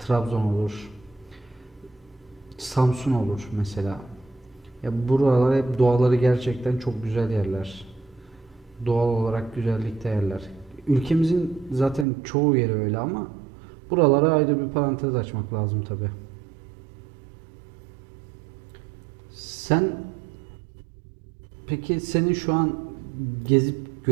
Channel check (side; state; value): left; drops out; at 12.1 s